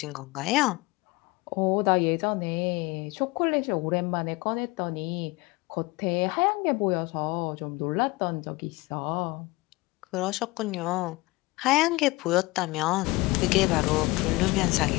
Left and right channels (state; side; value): quieter; right; 22.6 dB